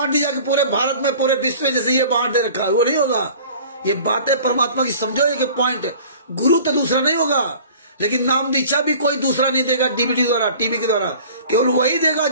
दी जाएगी पूरे भारत में, पूरे विश्व में, जैसे ये बांट दे रखा है, वो नहीं होगा। ये बातें परमात्मा की समझो, एक पॉइंट। गुरु तो दूसरा नहीं होगा, लेकिन नाम दीक्षा भी कोई दूसरा नहीं देगा डीवीडी द्वारा, टीवी के द्वारा। केवल वही देगा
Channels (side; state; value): both; inverted; correlation -0.46